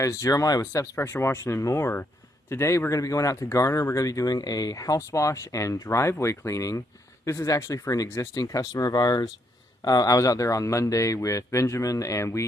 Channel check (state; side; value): normal; both; correlation 0.74